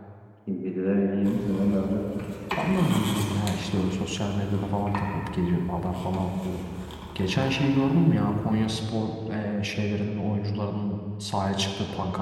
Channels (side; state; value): both; identical; correlation 1.00